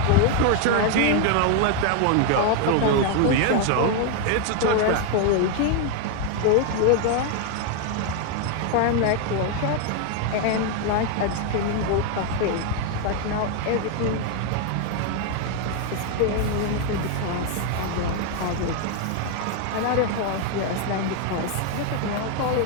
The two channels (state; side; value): different; both; correlation 0.01